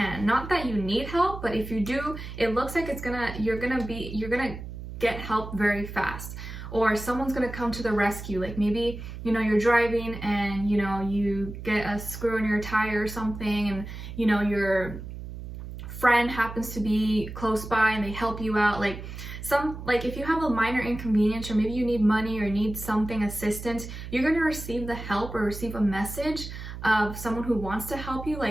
Not that you need help, but if you do, it looks like you're gonna get help very fast, or someone's gonna come to the rescue. Like maybe, you know, you're driving and, you know, you get a screw in your tire or something, and, you know, your friend happens to be close by and they help you out. Like if you have a minor inconvenience, or maybe you need money or need something, assistance, you're going to receive the help or receive a message of someone who wants to help you,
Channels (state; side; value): noise; right; hum, 10 dB below the sound